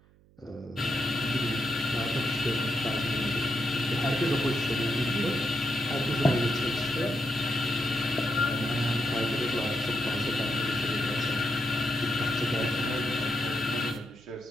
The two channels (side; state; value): right; noise; hum, 29 dB below the sound